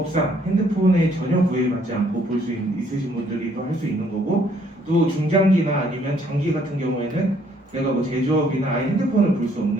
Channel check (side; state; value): both; normal; correlation 0.65